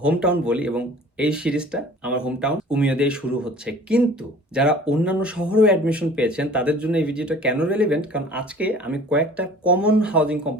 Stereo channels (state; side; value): normal; both; correlation 0.47